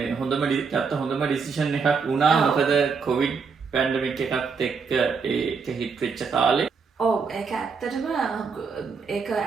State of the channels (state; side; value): quieter; left; 5.4 dB